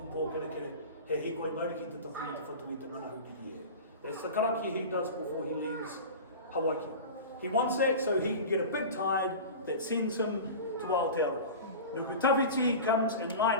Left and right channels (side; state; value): both; inverted; correlation -0.32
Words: pō kere kere. He hikoi mauri ki te tawhi te whatu I te ngana hukiri e. That's the karakia he does before he leaves Hawaii. He wants that so he can get a big tide that sends him to Aotearoa. Nukutawiti comes in